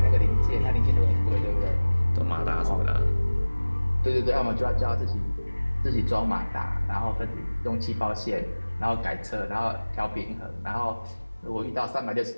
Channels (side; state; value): both; inverted; correlation -1.00